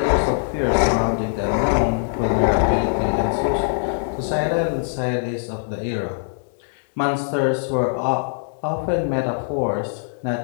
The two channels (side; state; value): right; silent; digital silence